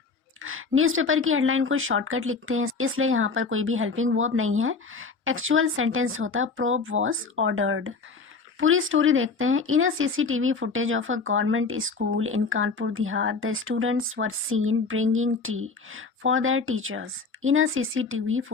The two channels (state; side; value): quieter; right; 4.5 dB